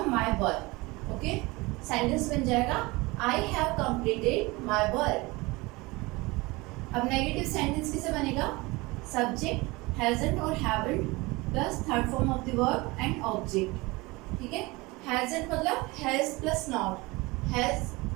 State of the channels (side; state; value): left; quieter; 23.3 dB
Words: My work. ओके, सेंटेंस बन जाएगा I have completed my work. अब नेगेटिव सेंटेंस किसे बनेगा? सब्जेक्ट हैजंट और haven't plus third form of the verb and object. ठीक है, हैजंट मतलब हैज प्लस नॉट। हैज